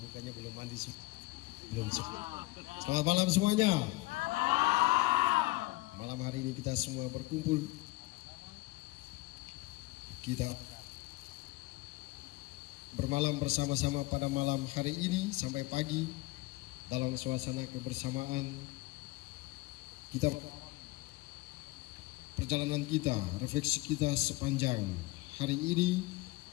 belum mandi sih. Belum. Selamat malam semuanya. Malam hari ini kita semua berkumpul. Kita bermalam bersama-sama pada malam hari ini sampai pagi dalam suasana kebersamaan. Kita perjalanan kita, refleksi kita sepanjang hari ini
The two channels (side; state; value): right; quieter; 21.0 dB